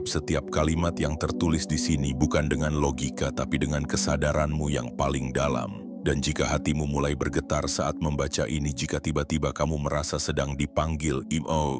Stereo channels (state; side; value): identical; both; correlation 1.00